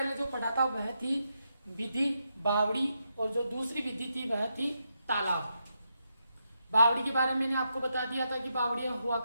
जो पढ़ा था वह थी विधि बावड़ी, और जो दूसरी विधि थी वह थी तालाब। बावड़ी के बारे में मैंने आपको बता दिया था कि बावड़ियां हुआ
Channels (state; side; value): inverted; both; correlation -0.83